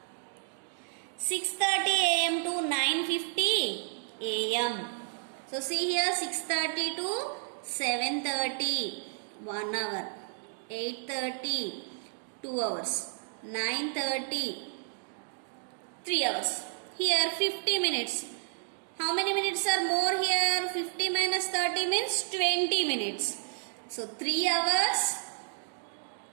6:30 a.m. to 9:50 a.m. So see here 6:30 to 7:30, 1 hour. 8:30, 2 hours. 9:30, 3 hours. Here 50 minutes. How many minutes are more here? 50 minus 30 means 20 minutes. So 3 hours,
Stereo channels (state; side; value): silent; left; digital silence